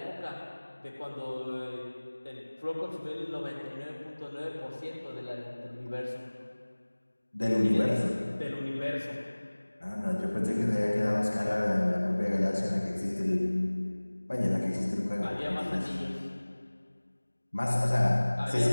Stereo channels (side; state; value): both; inverted; correlation -1.00